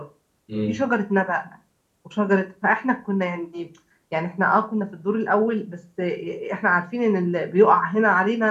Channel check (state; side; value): identical; both; correlation 1.00